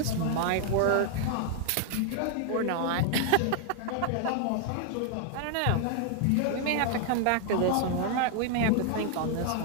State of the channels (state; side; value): different; both; correlation 0.00